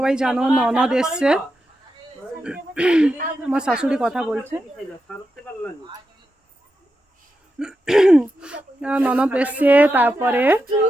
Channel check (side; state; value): both; normal; correlation 0.88